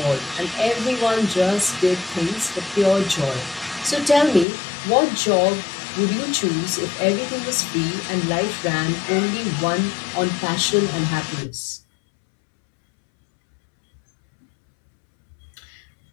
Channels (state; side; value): drops out; right; at 4.5 s